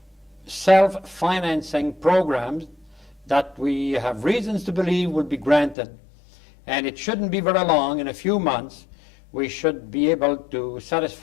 self-financing programs that we have reasons to believe will be granted. And it shouldn't be very long. In a few months, we should be able to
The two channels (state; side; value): drops out; right; at 5.8 s